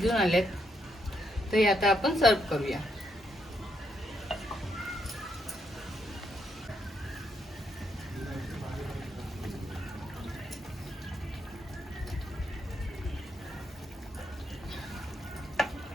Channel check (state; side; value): normal; both; correlation 0.77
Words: आल्यात। तर आता आपण सर्व करूया।